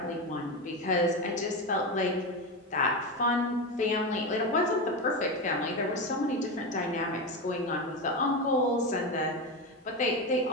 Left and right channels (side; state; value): both; normal; correlation 0.16